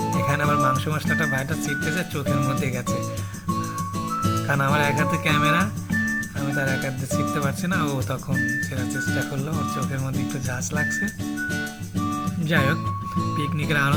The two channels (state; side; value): identical; both; correlation 1.00